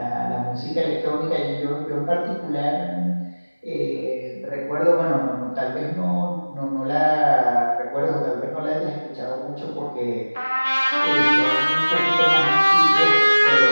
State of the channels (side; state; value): both; inverted; correlation -1.00